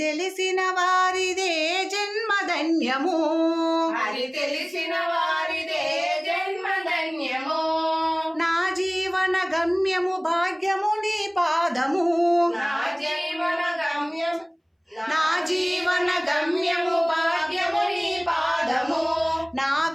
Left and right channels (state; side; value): identical; both; correlation 1.00